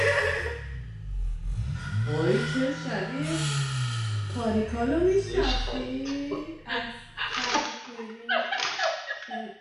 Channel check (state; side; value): identical; both; correlation 1.00